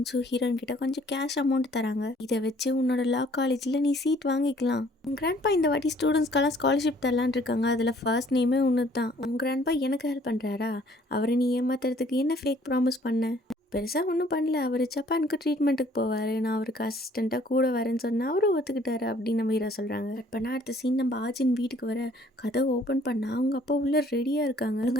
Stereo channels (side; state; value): both; normal; correlation 0.59